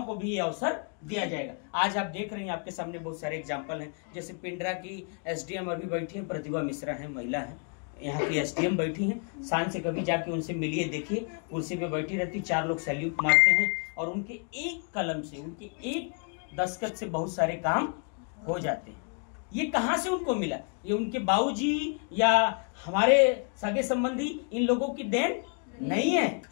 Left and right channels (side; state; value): right; quieter; 39.5 dB